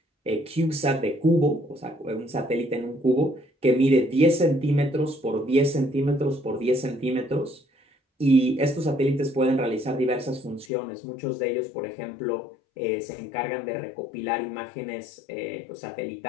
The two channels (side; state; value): right; drops out; at 10.7 s